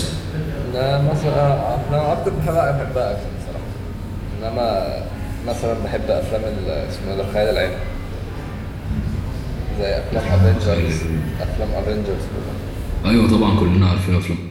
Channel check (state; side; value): identical; both; correlation 1.00